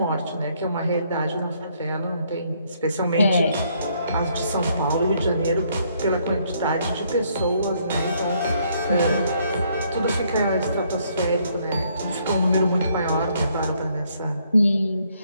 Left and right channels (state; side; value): inverted; both; correlation -0.69